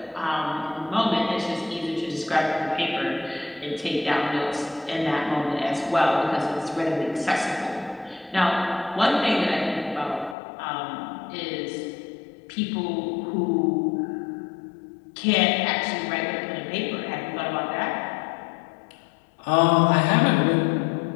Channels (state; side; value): drops out; right; at 10.4 s